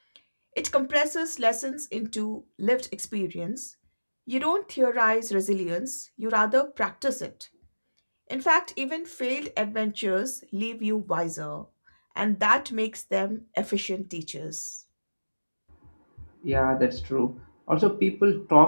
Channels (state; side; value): inverted; both; correlation -1.00